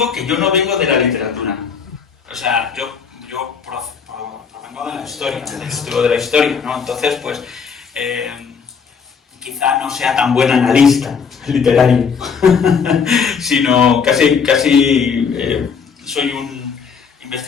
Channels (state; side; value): quieter; right; 6.2 dB